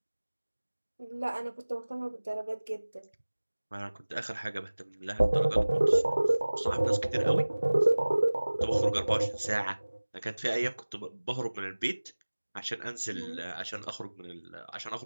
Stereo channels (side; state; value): both; inverted; correlation -1.00